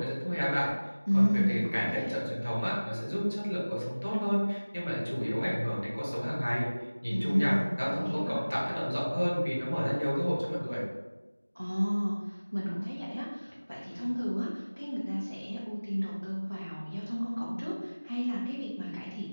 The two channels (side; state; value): both; inverted; correlation -1.00